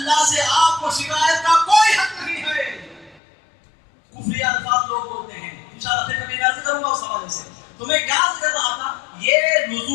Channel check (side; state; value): right; drops out; at 3.2 s